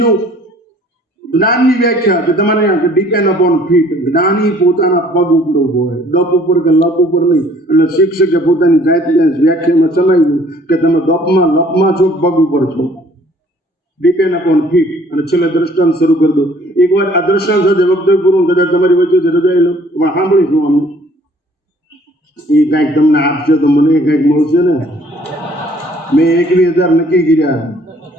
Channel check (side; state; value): both; normal; correlation 0.57